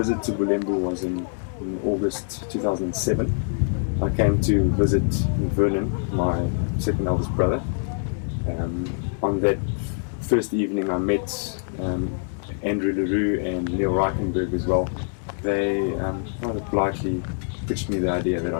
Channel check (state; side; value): silent; right; digital silence